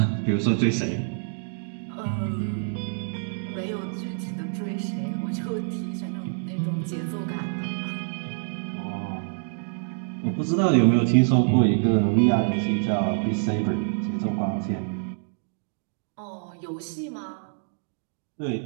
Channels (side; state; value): left; silent; digital silence